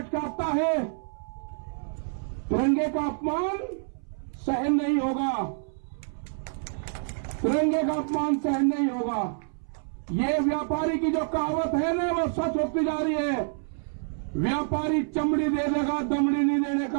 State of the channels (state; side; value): silent; left; 60 dB below the other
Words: के आता है, तिरंगे का अपमान सहन नहीं होगा, तिरंगे का अपमान सहन नहीं होगा। ये व्यापारी की जो कहावत है ना वो सच होती जा रही है। व्यापारी चमड़ी दे देगा, दमड़ी नहीं देने